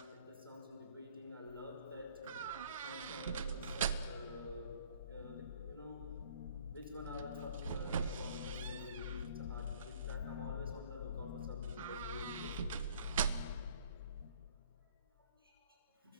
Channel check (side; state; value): both; inverted; correlation -0.55